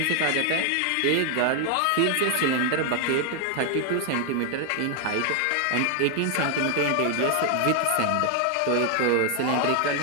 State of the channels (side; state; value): both; different; correlation 0.00